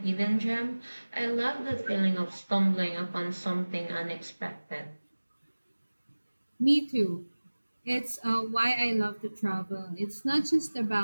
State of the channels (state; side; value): inverted; both; correlation -1.00